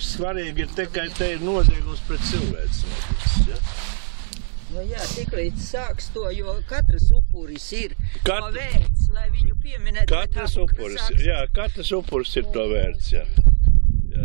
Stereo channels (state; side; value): silent; left; digital silence